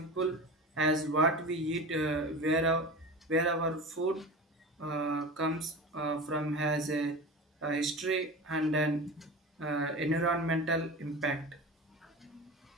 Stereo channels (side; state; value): both; normal; correlation 0.31